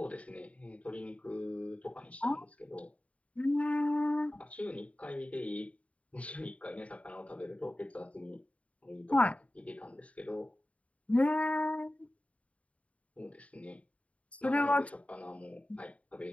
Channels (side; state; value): right; late; 0.066 ms